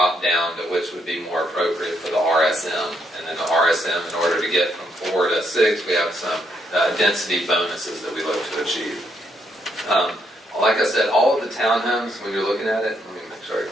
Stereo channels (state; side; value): normal; both; correlation 0.75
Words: down to which would be more appropriate for the RSM. And then the RSM, in order to get from 4 to 6, we have some density bonuses that we look to achieve. Like I said, all of the townhomes, when you're looking at it, let me make sure I